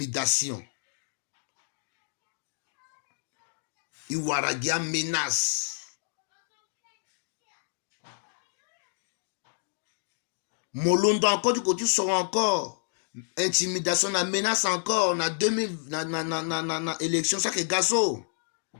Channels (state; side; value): silent; right; digital silence